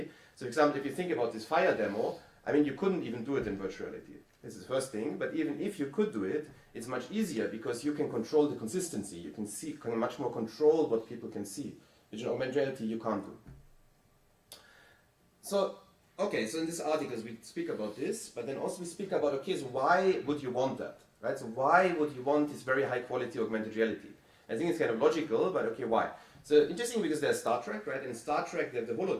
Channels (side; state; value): both; identical; correlation 1.00